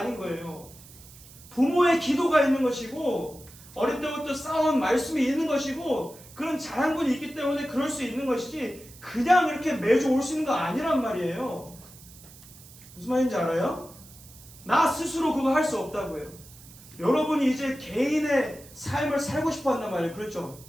거예요. 부모의 기도가 있는 것이고 어릴 때부터 쌓아온 말씀이 있는 것이고 그런 자양분이 있기 때문에 그럴 수 있는 것이지 그냥 이렇게 매주 올 수 있는 거 아니란 말이에요. 무슨 말인지 알아요? 나 스스로 그거 할 수 없다고요. 여러분이 이제 개인의 삶을 살고 싶어 한단 말이에요. 그렇죠?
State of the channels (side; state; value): right; noise; hiss, 20 dB below the sound